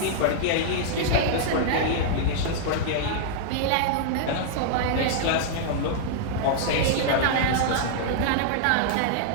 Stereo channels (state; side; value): different; both; correlation -0.01